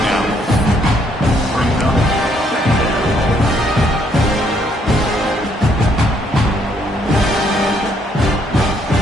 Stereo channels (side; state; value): both; normal; correlation 0.69